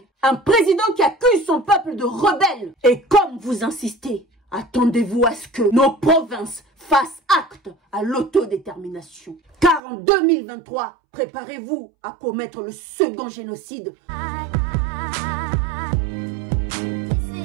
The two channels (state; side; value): drops out; left; at 9.8 s